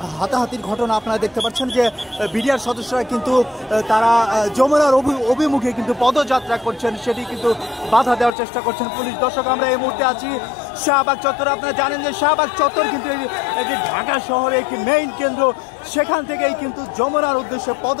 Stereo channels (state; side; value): drops out; right; at 8.3 s